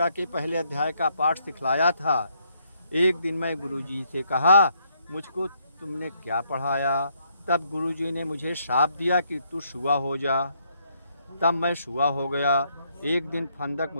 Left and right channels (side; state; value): both; inverted; correlation -0.73